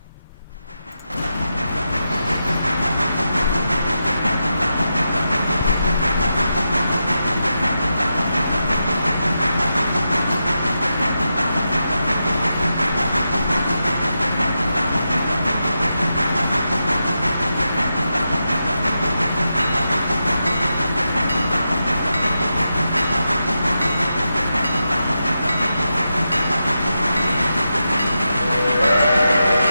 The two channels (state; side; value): inverted; both; correlation -0.88